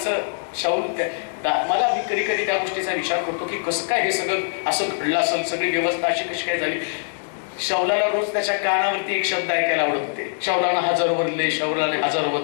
मला मी कधी कधी त्या गोष्टीचा विचार करतो की कसं काय हे सगळं असं घडलं असेल, सगळी व्यवस्था अशी कशी काय झाली. शौलाला रोज त्याच्या कानावरती एक शब्द ऐकायला आवडत होते, शौलानं 1000 बदले, शौलाने 1000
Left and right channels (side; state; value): right; silent; digital silence